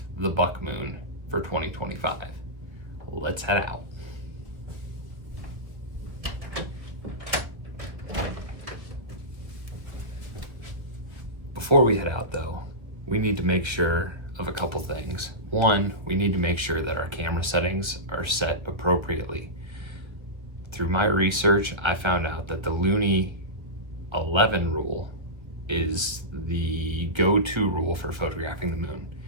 the buck moon for 2025. Let's head out. Before we head out though, we need to make sure of a couple things. One, we need to make sure that our camera settings are set appropriately. Through my research, I found out that the Luni 11 rule is the go-to rule for photographing the moon.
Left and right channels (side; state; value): left; late; 1.6 ms